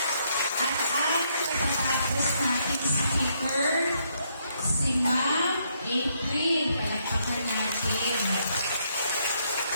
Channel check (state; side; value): inverted; both; correlation -0.74